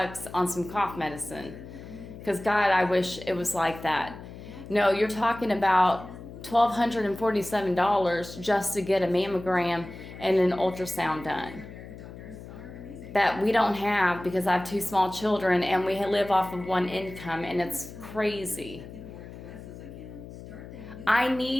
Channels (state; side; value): noise; left; hum, 14 dB below the sound